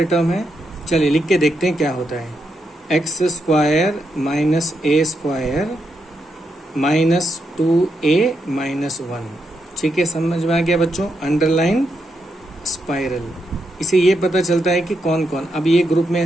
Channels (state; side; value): normal; both; correlation 0.82